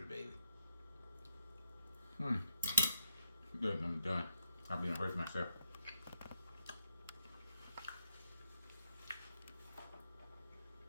baby. Good, I'm done. I'll be gonna hurt myself.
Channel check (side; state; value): both; inverted; correlation -0.79